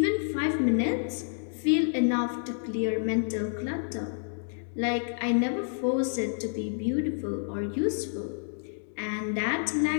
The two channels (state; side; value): silent; right; digital silence